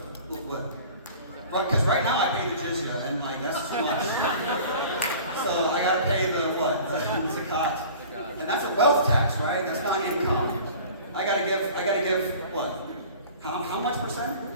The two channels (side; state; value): both; inverted; correlation -0.43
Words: what? Because right now I pay the jizya, and like, that's too much. So I gotta pay the, what? The zakat. And that's a wealth tax, right? That's not income. I gotta give what? How much percent?